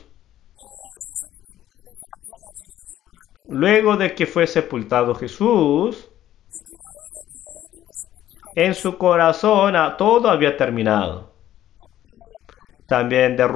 Luego de que fue sepultado Jesús, en su corazón todo había terminado. También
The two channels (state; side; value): quieter; right; 12.5 dB